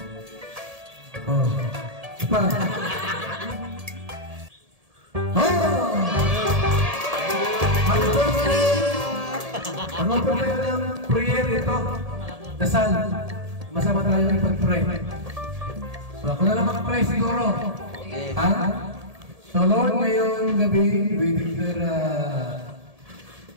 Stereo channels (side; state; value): left; late; 1.7 ms